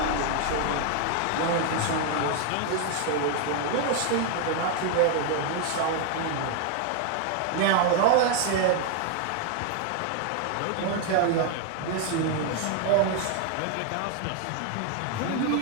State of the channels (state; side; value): different; both; correlation 0.01